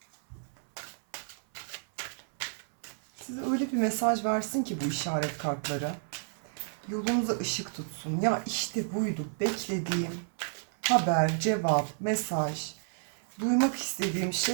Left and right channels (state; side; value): silent; left; 57 dB below the other